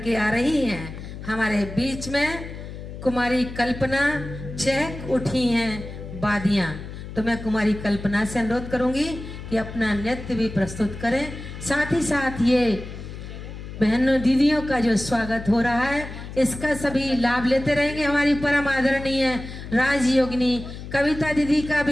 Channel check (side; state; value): left; noise; hum, 11 dB below the sound